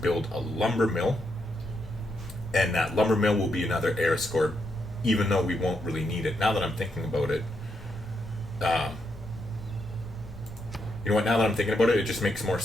a lumber mill. And that lumber mill will be another air score, even though we won't really need it. Now that I'm thinking about it, you know what? Now that I'm thinking about it, it just makes more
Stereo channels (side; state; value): both; normal; correlation 0.80